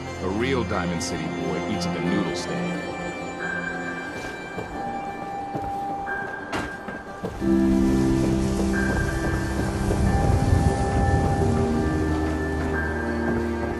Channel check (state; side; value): identical; both; correlation 1.00